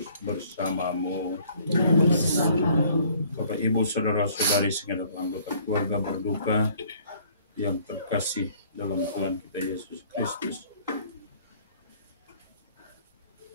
bersamamu. Bapak, Ibu, saudara-saudari segenap anggota keluarga berduka yang terkasih dalam Tuhan kita Yesus Kristus.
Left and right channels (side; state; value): both; inverted; correlation -0.57